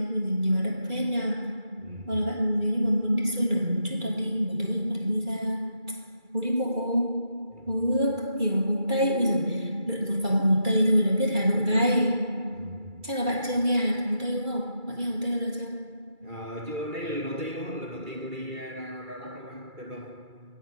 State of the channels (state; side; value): late; left; 2.3 ms